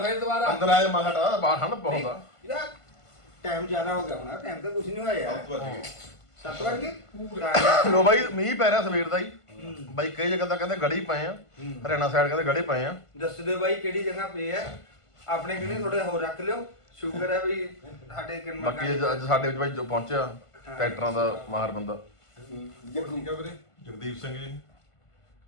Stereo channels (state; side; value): late; right; 1.5 ms